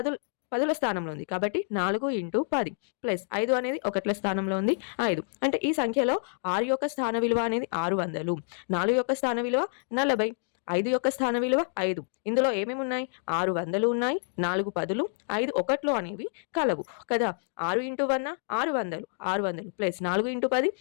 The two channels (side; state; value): right; silent; digital silence